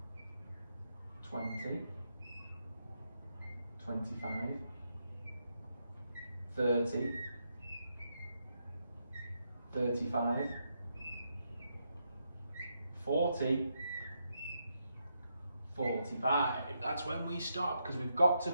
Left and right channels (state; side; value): inverted; both; correlation -0.82